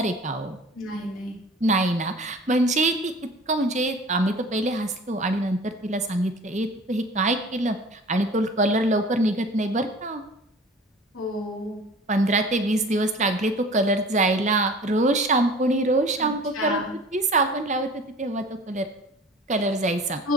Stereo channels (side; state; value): both; normal; correlation 0.43